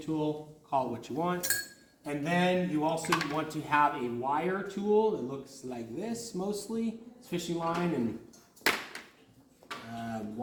tool, call it what you want. And then you also want to have a wire tool that looks like this mostly. It's fishing line and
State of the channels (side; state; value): both; identical; correlation 1.00